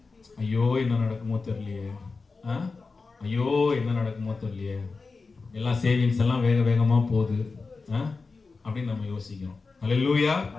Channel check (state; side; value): quieter; right; 4.2 dB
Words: ஐயோ என்ன நடக்குமோ தெரியலையே, ஐயோ என்ன நடக்குமோ தெரியலையே, எல்லாம் சேவிங்ஸ் எல்லாம் வேகமா போகுது அப்படின்னு நம்ம யோசிக்கிறோம். அல்லேலூயா.